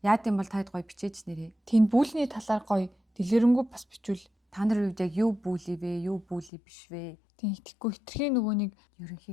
Яад юм бол таад гоё бичээч нэрээ. Тийм бүлний талаар гоё дэлгэрэнгүй бас бичвэл та нар үед яг юу бүли вэ, юу бүли биш вэ? Тийм итгэхгүй хитрхийн нөгөө нэг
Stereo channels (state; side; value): drops out; right; at 6.5 s